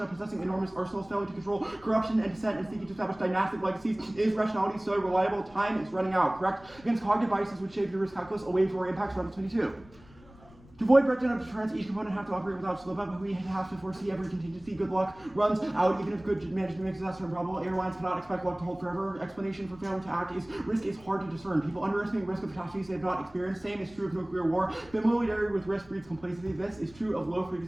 possessing enormous arsenals, failing to control corruption and dissent, and seeking to establish dynastic legacies, is rationality so reliable? Time is running out. Correct? Against cognitive biases which shape your risk calculus away from our impacts. Round 22. To avoid breakdown of deterrence, each component have to operate without slip up, but we have to foresee every contingency. Good luck runs out, even if good management makes disaster improbable. Airlines cannot expect luck to hold forever. Explanation for failing to act is risk is hard to discern. People underestimate risk of catastrophes they have not experienced. Same is true of nuclear war. Familiarity with risk breeds complacency. This is true of low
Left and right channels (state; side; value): noise; left; rumble, 23 dB below the sound